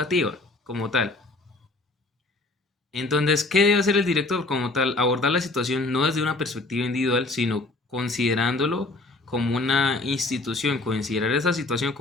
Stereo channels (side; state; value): right; quieter; 3.1 dB